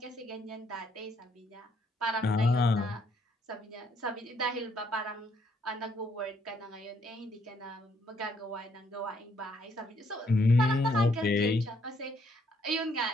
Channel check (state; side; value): normal; both; correlation 0.70